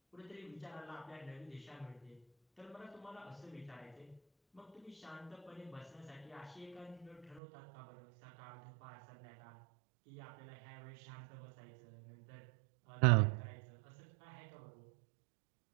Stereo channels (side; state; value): left; drops out; at 7.4 s